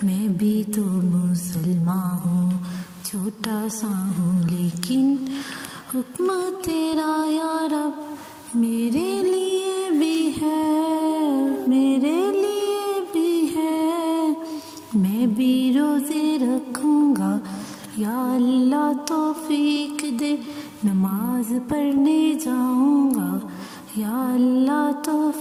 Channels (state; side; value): identical; both; correlation 1.00